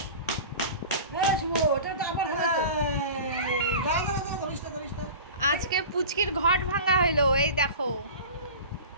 আজকে পুচকির ঘট ভাঙা হইলো, এই দেখো।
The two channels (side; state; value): both; inverted; correlation -0.35